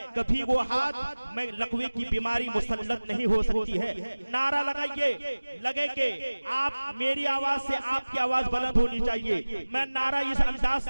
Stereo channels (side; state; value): both; inverted; correlation -1.00